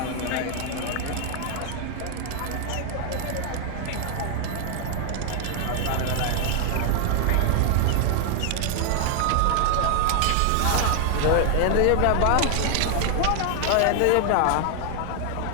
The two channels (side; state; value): both; different; correlation 0.00